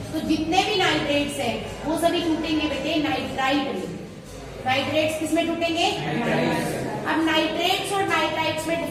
तो जितने भी नाइट्रेट्स हैं वो सभी टूटेंगे बेटे नाइट्राइट में। नाइट्रेट्स किस में टूटेंगे, अब नाइट्रेट्स और नाइट्राइट्स में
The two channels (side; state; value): both; identical; correlation 1.00